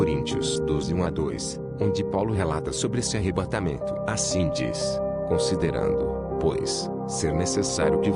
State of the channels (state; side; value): identical; both; correlation 1.00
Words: 12, 1-2, onde Paulo relata sobre esse arrebatamento. Assim diz: considerando, pois, ser necessário que